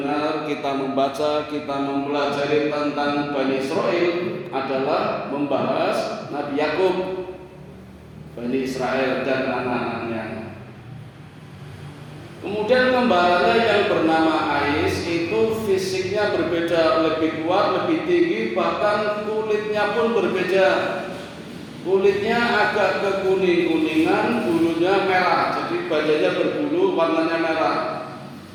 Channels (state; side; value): identical; both; correlation 1.00